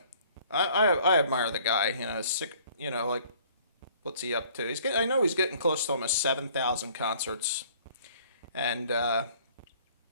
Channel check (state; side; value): inverted; both; correlation -0.56